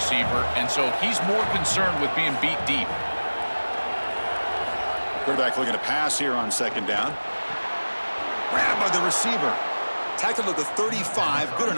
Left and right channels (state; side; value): inverted; both; correlation -1.00